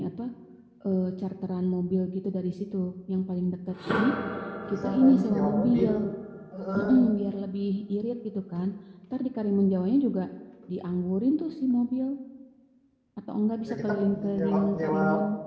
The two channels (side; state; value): both; identical; correlation 1.00